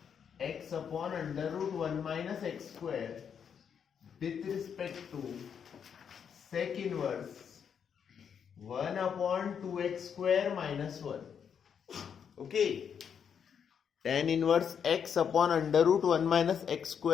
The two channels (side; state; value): right; quieter; 7.5 dB